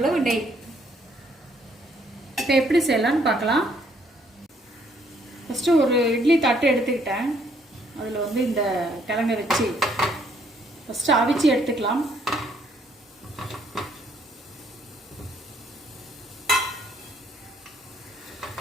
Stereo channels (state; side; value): normal; both; correlation 0.67